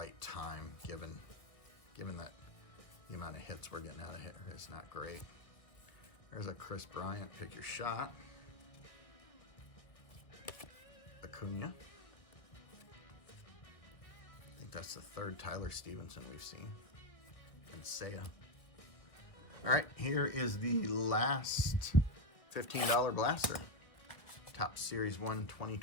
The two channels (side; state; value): right; late; 1.5 ms